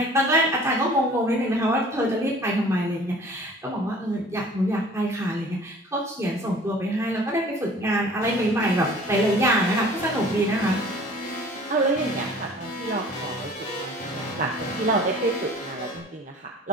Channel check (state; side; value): normal; both; correlation 0.48